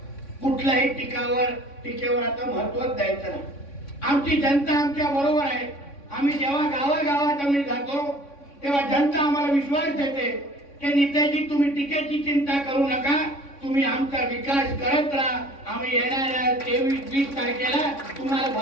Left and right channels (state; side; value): late; right; 3.6 ms